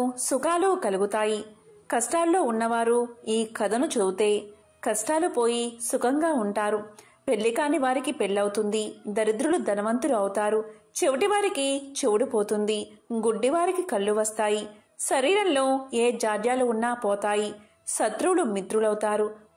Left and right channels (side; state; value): both; identical; correlation 1.00